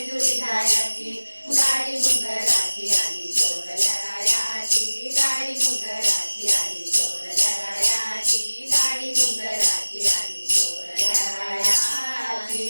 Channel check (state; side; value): inverted; both; correlation -1.00